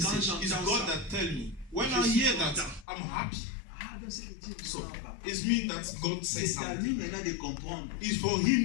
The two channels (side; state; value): right; drops out; at 2.9 s